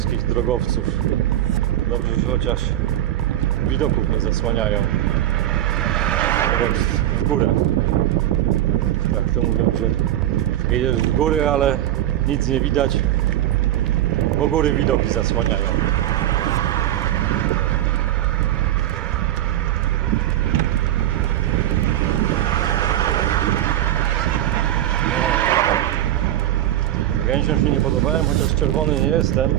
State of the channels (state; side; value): quieter; left; 13.0 dB